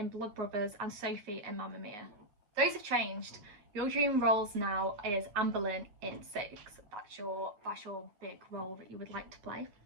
Blood Brothers and Sophie in Mamma Mia. Those have changed. Your dream roles now is Anne Boleyn in Six. That's your big role that you would like to play.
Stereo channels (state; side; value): late; left; 9.5 ms